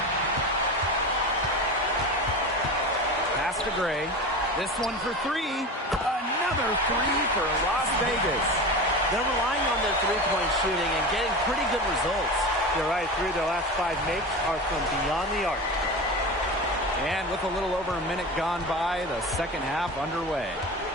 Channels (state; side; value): normal; both; correlation 0.28